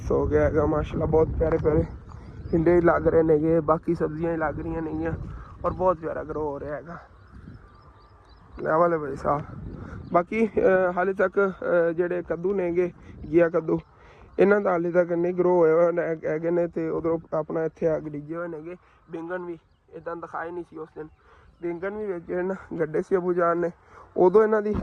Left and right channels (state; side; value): identical; both; correlation 1.00